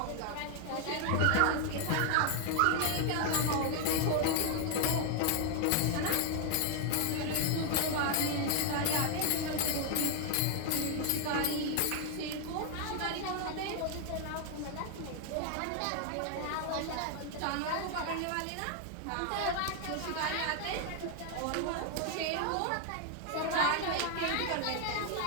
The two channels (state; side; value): different; both; correlation 0.00